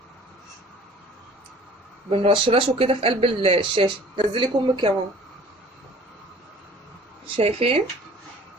بنرشرشه كده في قلب الشاشه. نزلي كمك يا ماما. شايفين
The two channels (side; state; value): both; normal; correlation 0.49